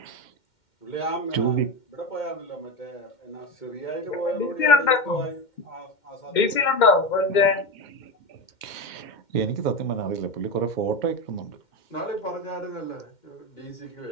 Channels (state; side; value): late; right; 2.1 ms